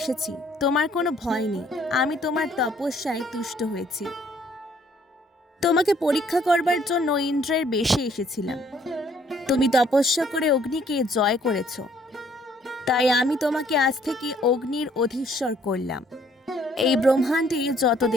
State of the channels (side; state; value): both; normal; correlation 0.63